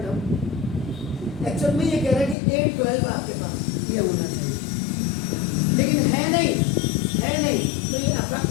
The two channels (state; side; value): drops out; right; at 2.4 s